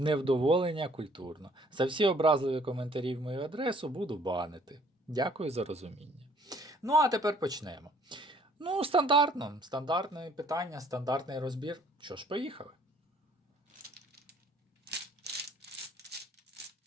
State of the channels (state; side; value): normal; both; correlation 0.59